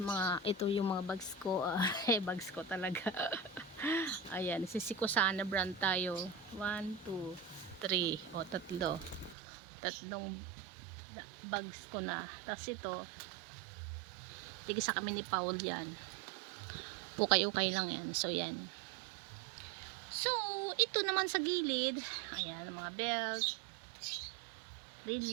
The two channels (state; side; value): drops out; left; at 9.3 s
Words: ito yung mga bags ko. Bags ko talaga. Ayan, Sisikusana brand tayo. 1, 2, 3. Tatlong bags ko na. Tapos ito, tigisa kami ni Paul yan. Ukay-ukay lang yan. So yan. So, ito naman sa gilid. Ayan, mga belt,